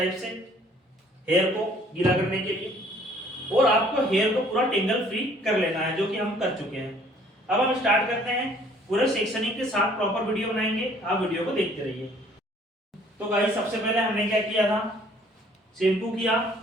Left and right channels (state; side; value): normal; both; correlation 0.58